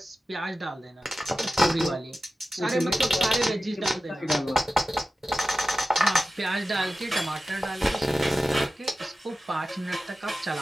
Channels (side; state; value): both; normal; correlation 0.94